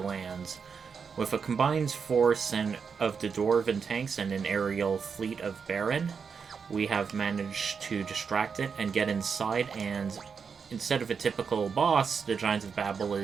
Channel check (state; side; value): quieter; left; 6.0 dB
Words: With a combined force of the Dwarven tanks and an aerial fleet of Baron, we have managed to distract it and get inside, and instead of a typical boss, the Giant of Babel